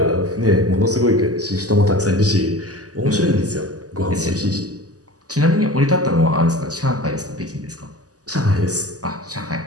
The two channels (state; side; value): late; left; 0.67 ms